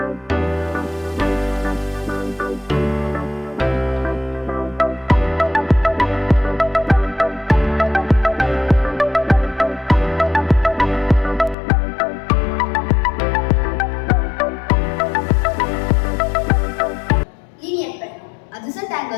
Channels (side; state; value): right; drops out; at 11.6 s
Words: Linear pair. Adjacent